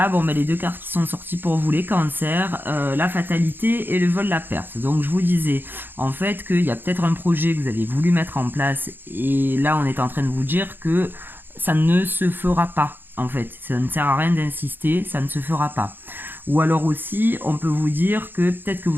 bon, les deux cartes qui sont sorties pour vous, les cancers, la fatalité et le vol de la perte. Donc je vous disais en fait qu'il y a peut-être un projet que vous avez voulu mettre en place et là on est en train de vous dire que ça ne se fera pas. En fait, ça ne sert à rien d'insister, ça ne se fera pas. Ou alors aussi, on peut vous dire que peut-être que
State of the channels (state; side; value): late; left; 0.096 ms